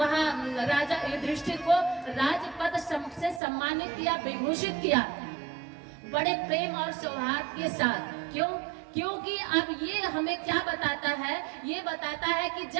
राजा युधिष्ठिर को राजपद से सम्मानित किया, विभूषित किया, बड़े प्रेम और सौहार्द के साथ। क्यों? क्योंकि अब ये हमें क्या बताता है? ये बताता है कि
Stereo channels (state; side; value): drops out; left; at 3.4 s